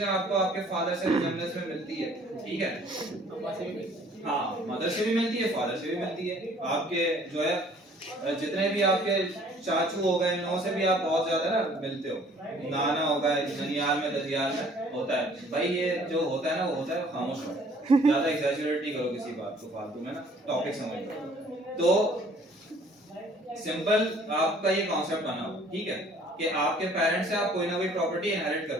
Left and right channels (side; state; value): both; normal; correlation 0.56